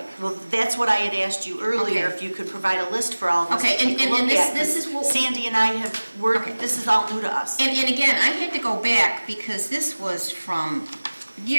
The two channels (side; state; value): both; inverted; correlation -1.00